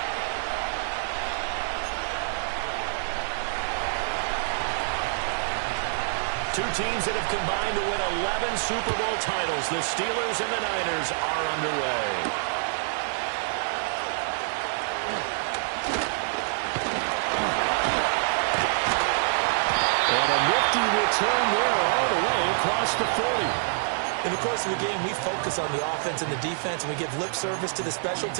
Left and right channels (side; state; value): left; silent; digital silence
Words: Two teams that have combined to win 11 Super Bowl titles. The Steelers and the Niners are underway. And a nifty return there all the way across the 40. In the course of the game, we focus on the offense and the defense, and we give lip service to the special